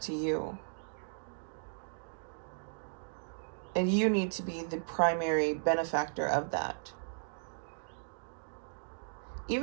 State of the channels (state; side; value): silent; left; digital silence